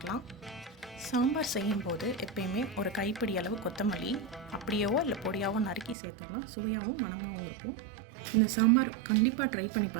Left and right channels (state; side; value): drops out; left; at 6.0 s